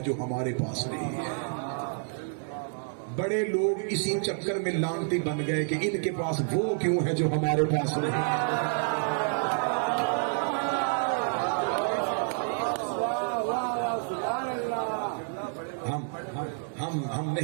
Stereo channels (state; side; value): silent; left; 59 dB below the other